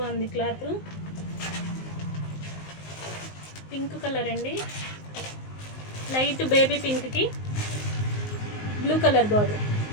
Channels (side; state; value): right; late; 19 ms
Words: క్లాత్. పింక్ కలర్ అండి, లైట్ బేబీ పింక్కి బ్లూ కలర్ బార్డర్.